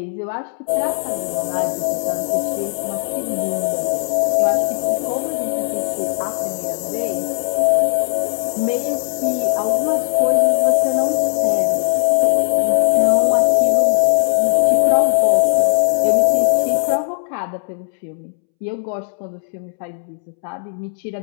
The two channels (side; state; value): right; silent; 67 dB below the other